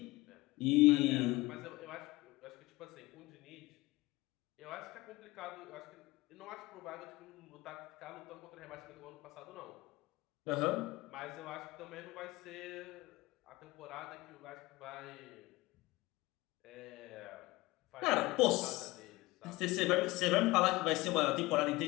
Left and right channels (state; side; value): quieter; right; 20.7 dB